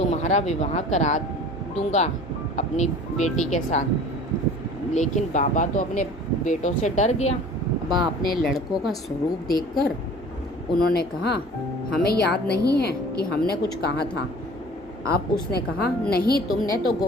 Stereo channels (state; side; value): normal; both; correlation 0.45